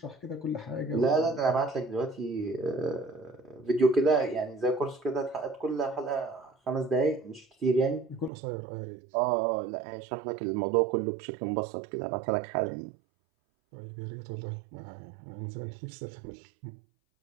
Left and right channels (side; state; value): left; drops out; at 8.3 s